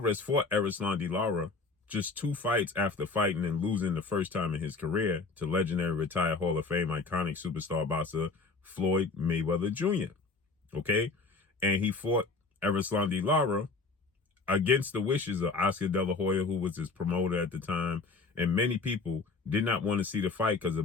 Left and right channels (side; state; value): right; quieter; 4.0 dB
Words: fought Erislandy Lara just 2 fights after fighting and losing the first time in his career to legendary retired Hall of Fame iconic superstar boxer Floyd Mayweather Jr. Okay? And he fought Erislandy Lara against the wishes of Oscar De La Hoya, who was his promoter at the time, and many people did not want to see the fight because of